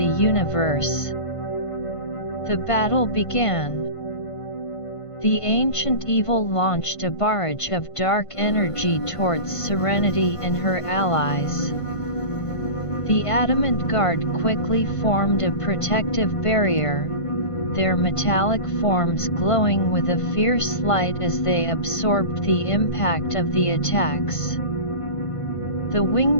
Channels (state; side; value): late; right; 1.5 ms